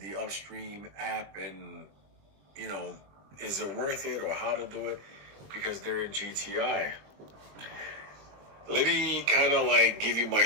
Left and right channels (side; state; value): left; late; 20 ms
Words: Upstream app, and, is it worth it, or how to do it, because they're in GTI. Let me kind of give you my